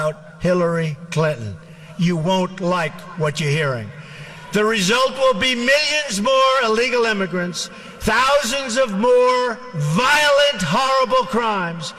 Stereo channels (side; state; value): both; identical; correlation 1.00